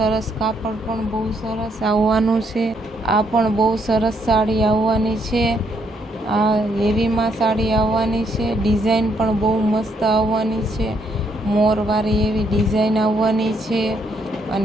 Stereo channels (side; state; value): both; normal; correlation 0.73